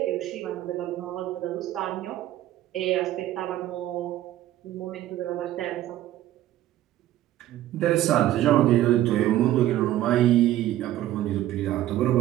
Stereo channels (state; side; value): quieter; left; 13.8 dB